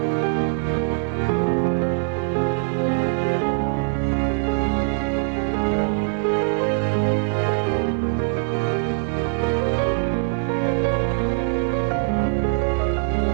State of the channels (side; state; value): left; silent; 56 dB below the other